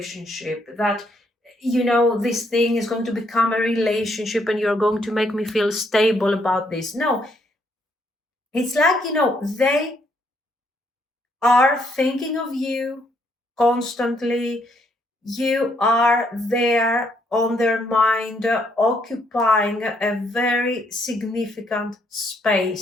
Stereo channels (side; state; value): both; normal; correlation 0.72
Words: That this thing is going to become a relationship, and you're going to make me feel stable about this. No, it's like they are thinking of you constantly. You are there on their mind, occupying a very significant